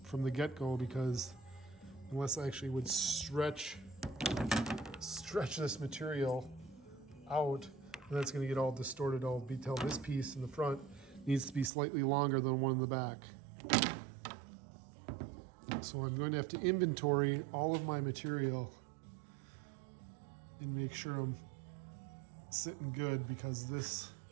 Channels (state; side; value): drops out; left; at 11.7 s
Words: from the get-go, because unless I actually would stretch this material out, and that's going to get all distorted, all detailed. This piece in the front needs to be slightly longer than one in the back. So I'm going to have to inventory all of my material and make sure I'm sitting good, because this